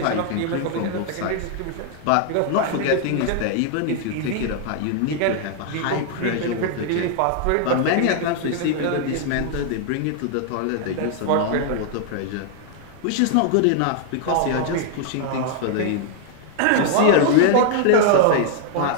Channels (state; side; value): different; both; correlation 0.00